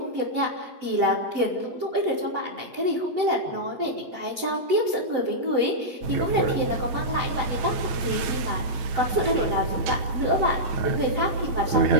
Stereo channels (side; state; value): left; late; 8.9 ms